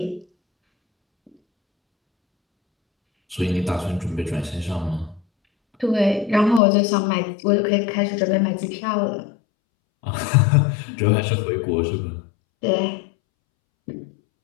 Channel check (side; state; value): right; drops out; at 6.6 s